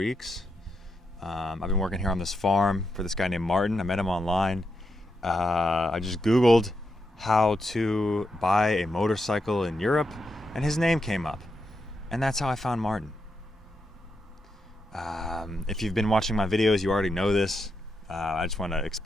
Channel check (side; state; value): both; normal; correlation 0.84